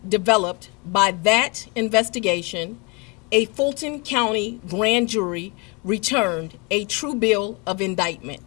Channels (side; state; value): right; quieter; 30.2 dB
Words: developed by that investigation, a Fulton County grand jury returned a true bill of